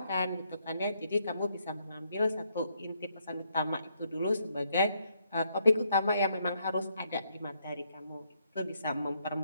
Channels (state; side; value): inverted; both; correlation -0.74